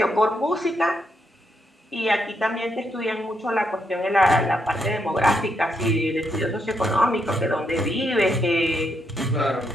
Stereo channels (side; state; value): both; normal; correlation 0.79